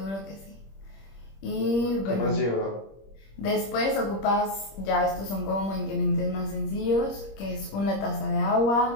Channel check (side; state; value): right; late; 26 ms